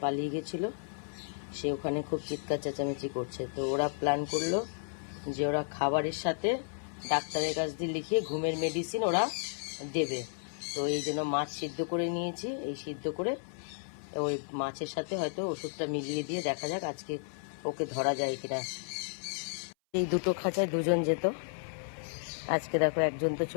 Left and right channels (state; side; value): silent; right; 56 dB below the other